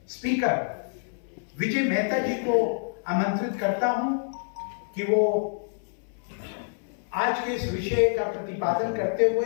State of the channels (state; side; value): silent; right; 60 dB below the other